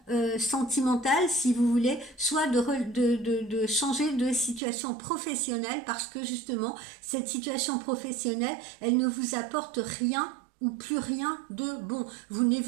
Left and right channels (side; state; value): left; drops out; at 4.6 s